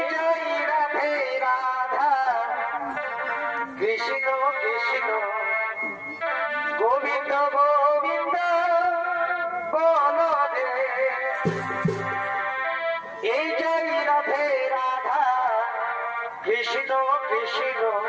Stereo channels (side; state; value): both; identical; correlation 1.00